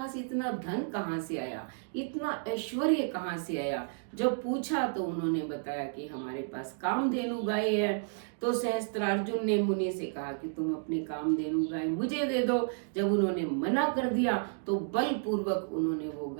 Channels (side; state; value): left; silent; digital silence